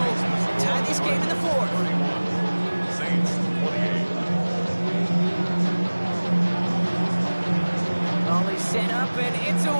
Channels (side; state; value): both; inverted; correlation -1.00